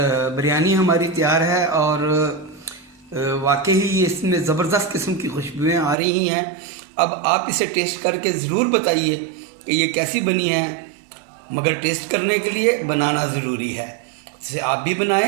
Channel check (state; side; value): drops out; left; at 6.0 s